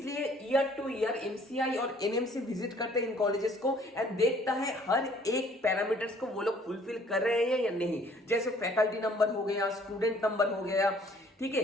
ईयर टू ईयर एमसीआई और एनएमसी विजिट करते हैं इन कॉलेजेस को एंड देखता है हर एक पैरामीटर्स को वो लोग फुलफिल कर रहे हैं या नहीं। जैसे फैकल्टी नंबर हो गया, स्टूडेंट नंबर हो गया, ठीक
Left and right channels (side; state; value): both; normal; correlation 0.58